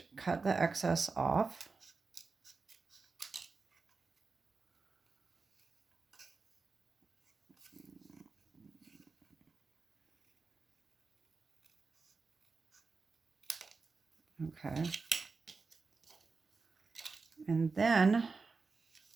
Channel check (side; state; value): left; quieter; 4.3 dB